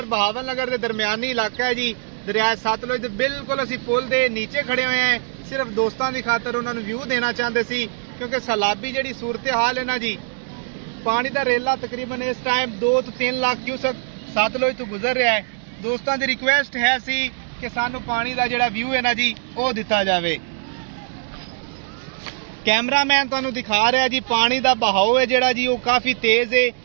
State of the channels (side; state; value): left; silent; digital silence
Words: बहावल नगर के दरमियानी इलाका है जी। दरिया सतलुज दे बिल्कुल असी पुल दे नीचे खड़े हुए हैं, सिर्फ दोस्तों की खातर उन्होंने व्यू देना चाहते सी, क्योंकि सैलाबी जी सूरत हाल है ना जी। पानी का रेला तकरीबन इस टाइम 2 तो 3 लाख क्यूसेक सतलुज तो गुजर रहा है। दोस्तों की रिक्वेस्ट है सी कि सानू पानी का जिहड़ा व्यू है ना जी वो दिता जाए। कैमरामैन तुहानू दिखा रहा है जी, पानी का बहाव है जिहड़ा जी वो काफी तेज है